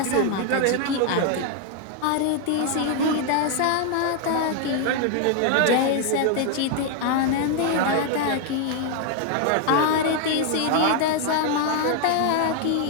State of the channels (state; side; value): different; both; correlation 0.00